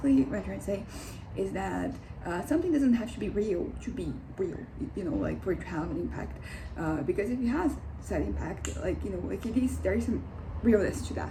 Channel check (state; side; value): identical; both; correlation 1.00